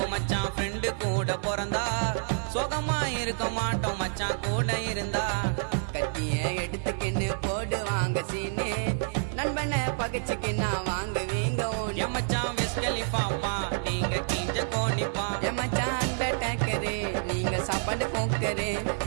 மச்சான் ஃப்ரெண்டு கூட பிறந்தா சுகமா இருக்க மாட்டோம் மச்சான் கூட இருந்தா கத்திய எடுத்துக்கின்னு போடுவாங்க சீனு நண்பனை பகச்சுக்கின்னா வாங்குவீங்க என் மச்சான் விஸ்கலிப்பாப்பா நீங்க கிஞ்ச கோணிப்பா என் மச்சான் டேக்கரு நீங்க சாப்பாடு போக்கரு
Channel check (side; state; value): left; silent; 59 dB below the other